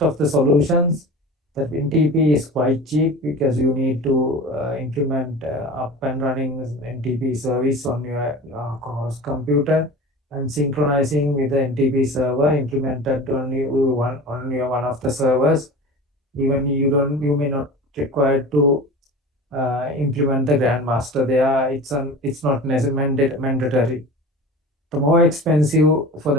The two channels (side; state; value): both; normal; correlation 0.35